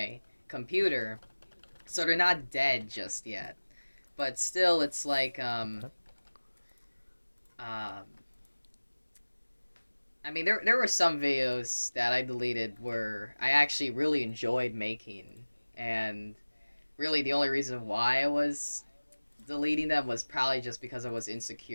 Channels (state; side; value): inverted; both; correlation -1.00